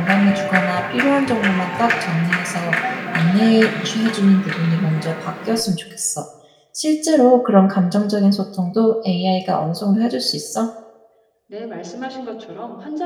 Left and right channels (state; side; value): identical; both; correlation 1.00